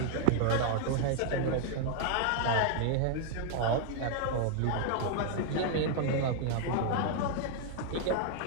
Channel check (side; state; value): both; different; correlation 0.00